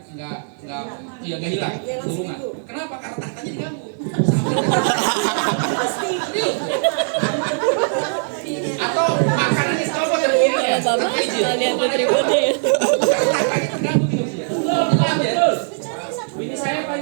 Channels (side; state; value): left; silent; 65 dB below the other